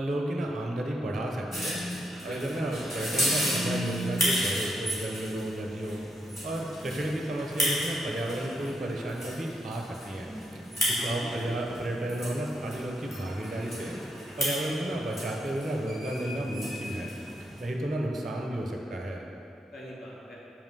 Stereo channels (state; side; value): normal; both; correlation 0.79